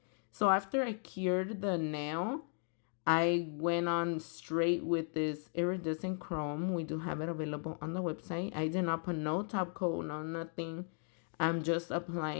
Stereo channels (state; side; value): silent; right; 54 dB below the other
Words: So after I cured the nail, I went on straight with this iridescent chrome. We do have it available on the website. I did not put no top coat, no nothing. I'm just